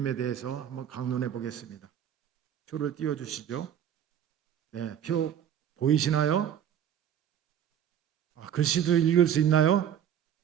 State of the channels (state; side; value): quieter; left; 9.6 dB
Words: 대해서 한번 강론해 보겠습니다. 표를 띄워주시죠. 네, 표 보이시나요? 글씨도 읽을 수 있나요?